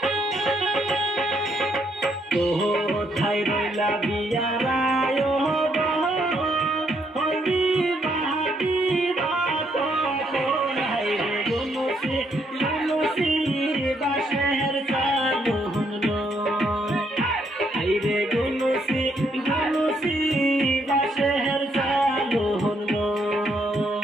কোথায় রইলা বিয়ারায় হবি বাহাতি রাত হাইরে গুনুসি গুনুসি বাঁশের চালু হলো। হাইরে গুনুসি গুনুসি বাঁশের চালু হলো।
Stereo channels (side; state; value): both; normal; correlation 0.73